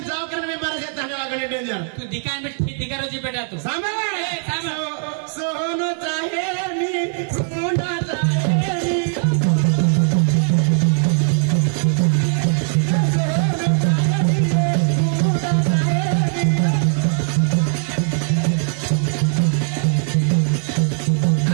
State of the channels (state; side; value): silent; left; digital silence